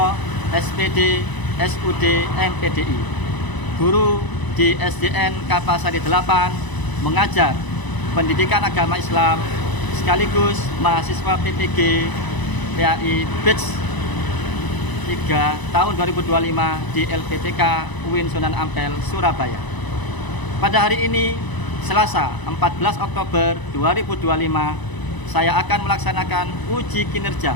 SPD SUD MPDI, guru di SDN Kapasari 8, mengajar pendidikan agama Islam sekaligus mahasiswa PPG PAI Batch 3 tahun 2025 di LPTK UIN Sunan Ampel, Surabaya. Pada hari ini, Selasa 14 Oktober 2025, saya akan melaksanakan uji kinerja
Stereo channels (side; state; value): right; late; 1.0 ms